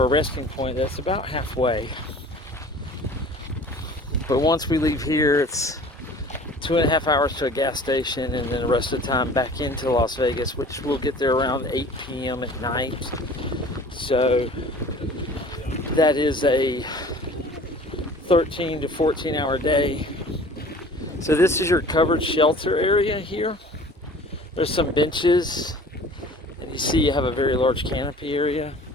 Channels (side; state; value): both; normal; correlation 0.46